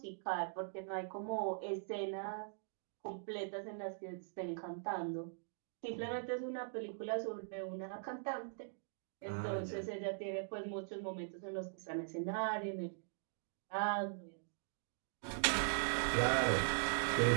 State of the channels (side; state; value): left; silent; digital silence